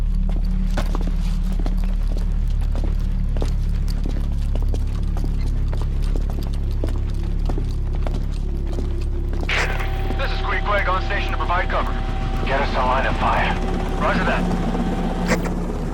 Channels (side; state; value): both; identical; correlation 1.00